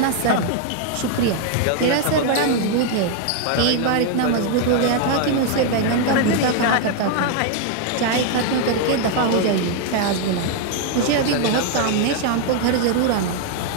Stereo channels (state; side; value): different; both; correlation 0.00